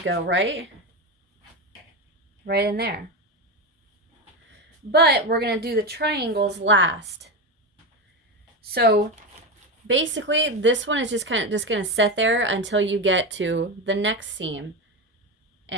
go, right? Right in there. But we're going to do the triangles last. So basically this one is just going to sit there until you get to the next seam,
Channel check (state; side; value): normal; both; correlation 0.17